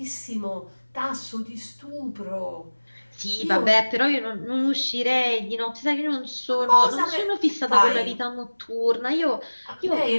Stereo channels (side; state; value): both; inverted; correlation -1.00